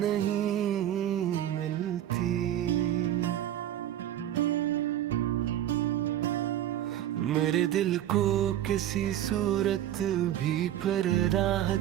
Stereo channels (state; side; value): quieter; left; 11.9 dB